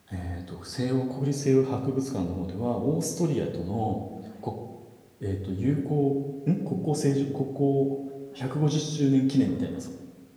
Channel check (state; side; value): identical; both; correlation 1.00